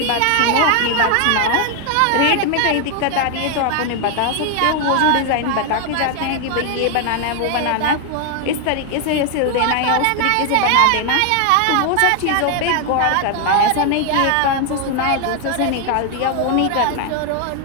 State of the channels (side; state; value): both; different; correlation 0.00